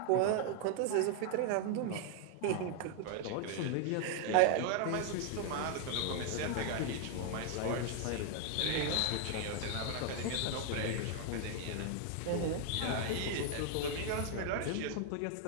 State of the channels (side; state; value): both; different; correlation 0.00